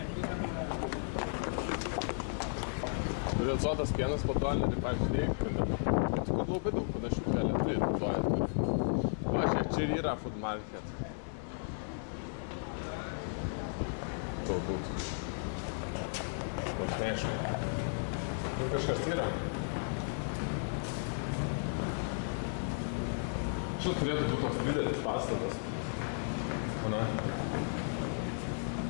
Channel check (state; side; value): silent; right; digital silence